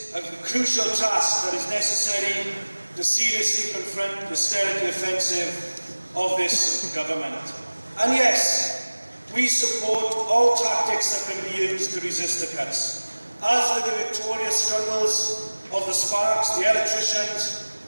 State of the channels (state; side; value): inverted; both; correlation -1.00